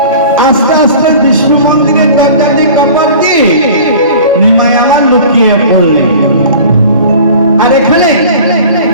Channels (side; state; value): both; inverted; correlation -0.42